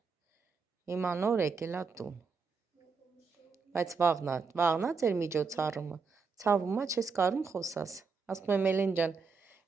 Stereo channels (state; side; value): quieter; left; 5.0 dB